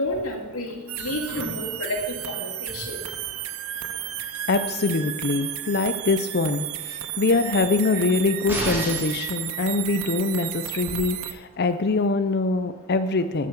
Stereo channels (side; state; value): both; normal; correlation 0.20